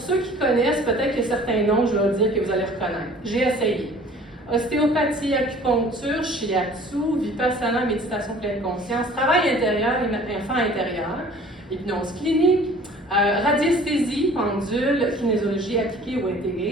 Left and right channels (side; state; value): both; normal; correlation 0.49